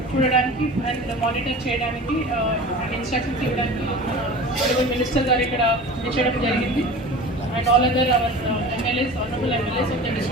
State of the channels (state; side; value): normal; both; correlation 0.37